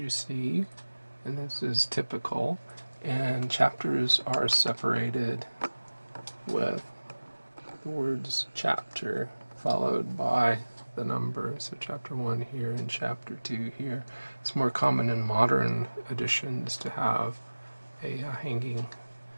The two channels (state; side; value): inverted; both; correlation -1.00